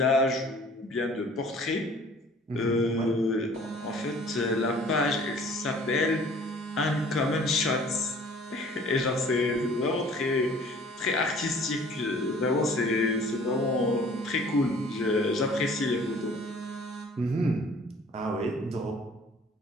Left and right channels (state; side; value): normal; both; correlation 0.51